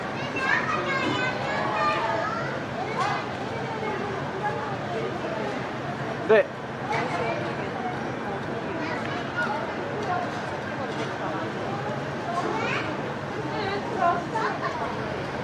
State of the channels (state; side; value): identical; both; correlation 1.00